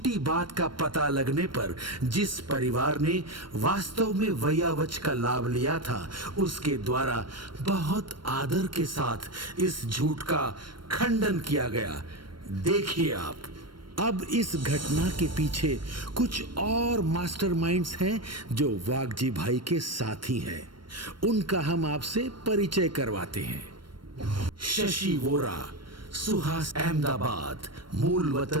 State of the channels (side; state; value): left; late; 0.72 ms